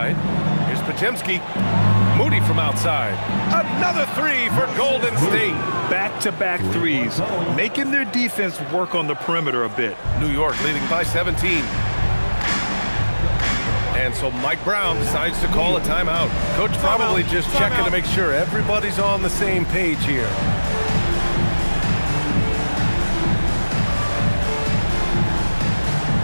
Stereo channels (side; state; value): both; inverted; correlation -1.00